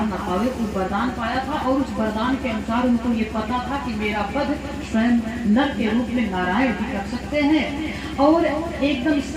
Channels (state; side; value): identical; both; correlation 1.00